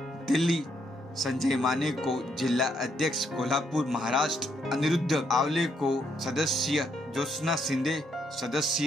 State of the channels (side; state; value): both; normal; correlation 0.74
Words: दिल्ली, संजय माने को जिला अध्यक्ष कोल्हापुर महाराष्ट्र, अनिरुद्ध आवले को सदस्य, ज्योत्सना शिंदे